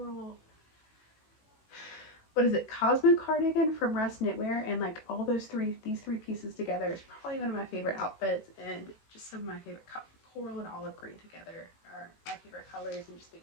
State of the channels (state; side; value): late; right; 18 ms